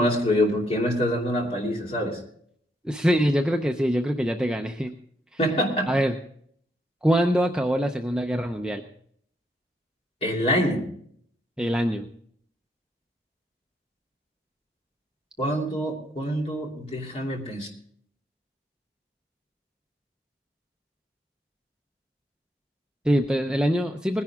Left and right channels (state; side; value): normal; both; correlation 0.75